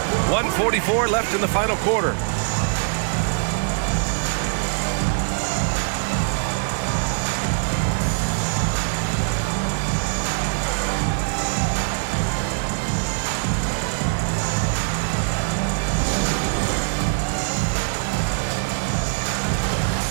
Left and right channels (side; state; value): left; silent; digital silence